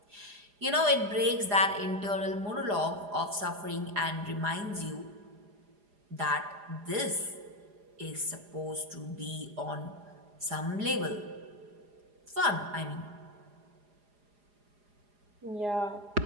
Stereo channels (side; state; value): left; late; 4.9 ms